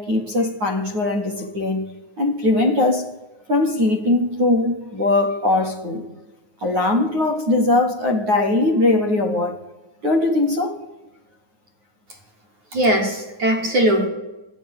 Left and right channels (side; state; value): left; late; 9.5 ms